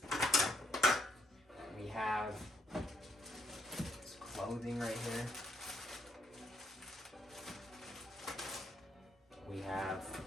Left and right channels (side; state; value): both; normal; correlation 0.72